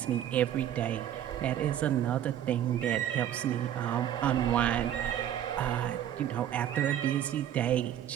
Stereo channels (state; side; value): quieter; left; 10.9 dB